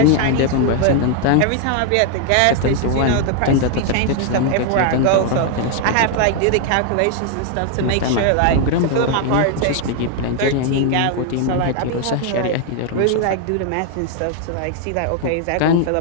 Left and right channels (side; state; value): both; different; correlation 0.00